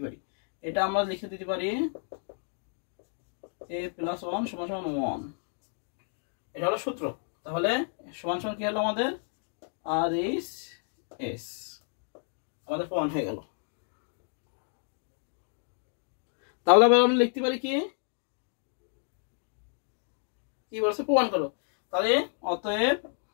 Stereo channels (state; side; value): silent; right; 56 dB below the other